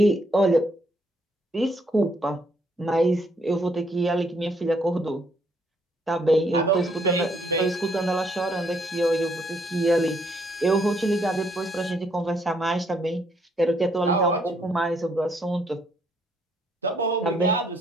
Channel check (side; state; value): both; normal; correlation 0.70